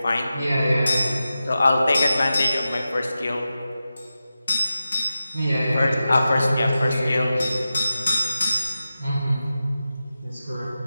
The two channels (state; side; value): inverted; both; correlation -0.92